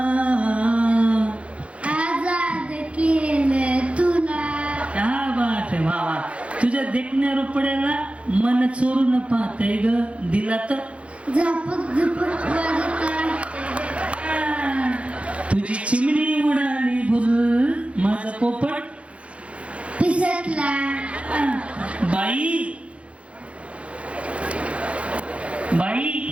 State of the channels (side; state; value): left; late; 0.062 ms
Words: आजाद केलं तुला. क्या बात आहे. वा वा. तुझ्या देखण्या रुपड्याला मन चोरून पाहतय ग, दिला तर झपक झपक वाजत तुझी चिमणी उडाली भुल, माझा पोपट पिसटला. बाई बाई.